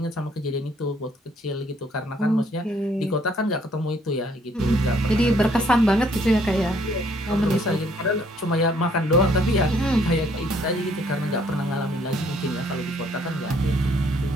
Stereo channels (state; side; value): normal; both; correlation 0.65